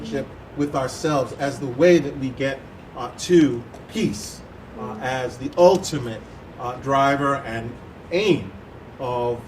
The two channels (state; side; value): identical; both; correlation 1.00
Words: with ourselves as the way that we get to peace as the ultimate driver and aim of